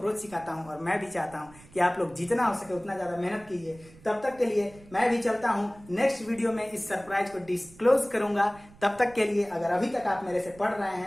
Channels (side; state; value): right; noise; rumble, 23 dB below the sound